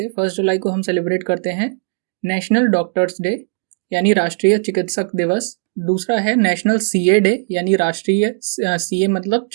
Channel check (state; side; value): silent; left; digital silence